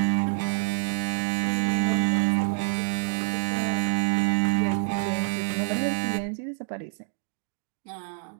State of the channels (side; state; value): left; silent; digital silence